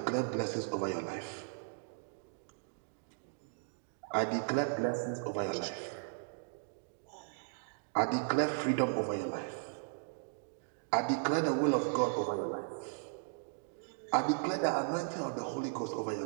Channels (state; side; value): silent; left; digital silence